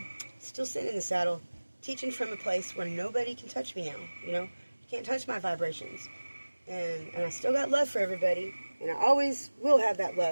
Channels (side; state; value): both; inverted; correlation -1.00